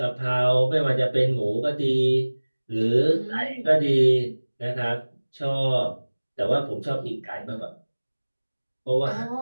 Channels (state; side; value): inverted; both; correlation -1.00